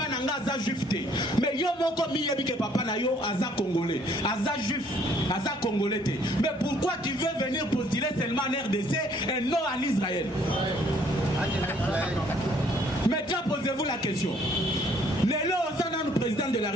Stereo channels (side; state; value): both; normal; correlation 0.62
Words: nanga aza juif te. Mais yo moko miyebi que papa na yo aza congolais, aza juif, aza congolais te. Mais pourquoi tu veux venir postuler seulement en RDC et non en Israël? Maintenant posez-vous la question. Lelo osana le président de la